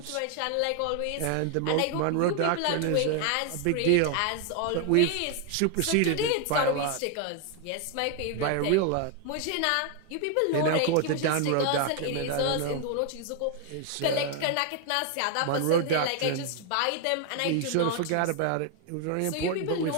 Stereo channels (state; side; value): different; both; correlation 0.01